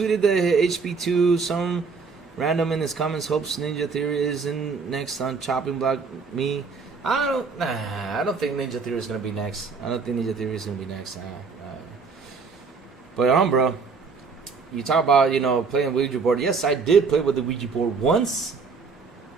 the HP2. Some random in his comments hopes Ninja Theory isn't next on chopping block me. I don't think Ninja Theory is gonna be next. I don't think Ninja Theory is gonna be next. But bro, you talk about playing Ouija board. Yes, I did play with the Ouija board once,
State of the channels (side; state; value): left; quieter; 4.9 dB